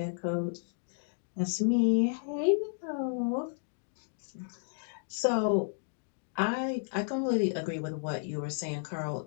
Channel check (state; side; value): silent; right; digital silence